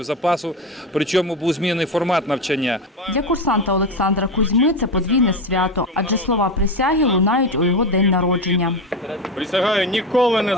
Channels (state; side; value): normal; both; correlation 0.19